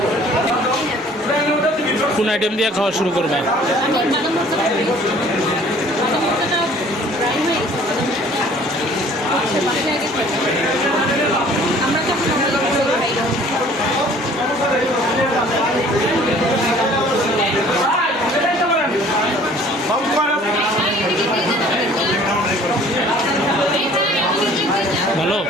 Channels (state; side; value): normal; both; correlation 0.53